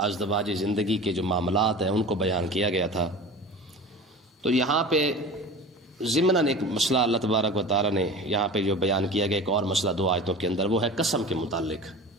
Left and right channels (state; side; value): normal; both; correlation 0.35